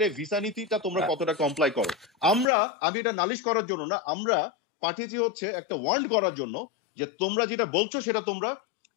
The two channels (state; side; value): drops out; right; at 2.5 s